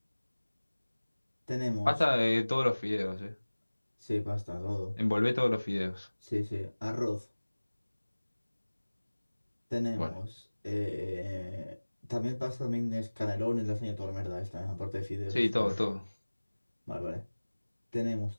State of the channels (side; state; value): both; inverted; correlation -1.00